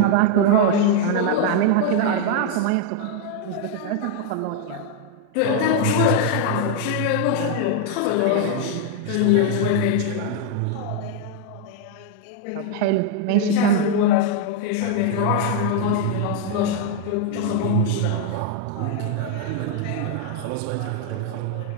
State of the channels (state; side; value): different; both; correlation 0.00